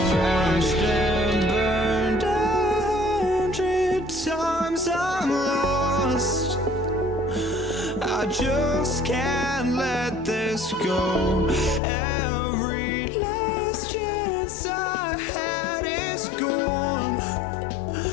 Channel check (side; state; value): right; drops out; at 11.8 s